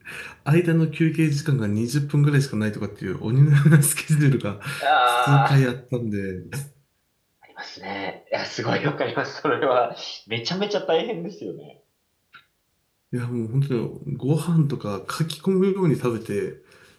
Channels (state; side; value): identical; both; correlation 1.00